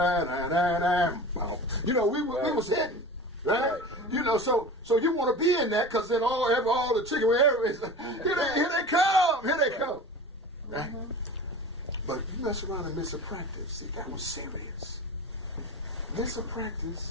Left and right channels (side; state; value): both; normal; correlation 0.35